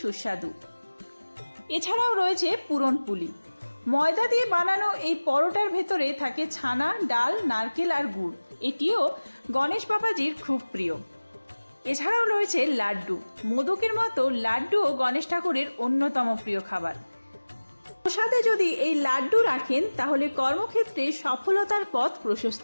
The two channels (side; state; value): both; inverted; correlation -1.00